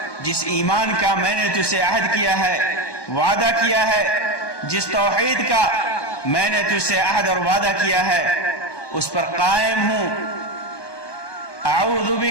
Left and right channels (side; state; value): right; late; 1.1 ms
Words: جس ایمان کا میں نے تجھ سے عہد کیا ہے، وعدہ کیا ہے، جس توحید کا میں نے تجھ سے عہد اور وعدہ کیا ہے، اس پر قائم ہوں۔ اعوذ